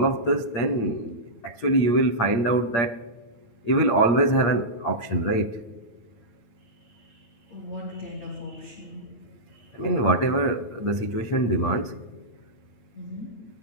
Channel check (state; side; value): late; right; 8.6 ms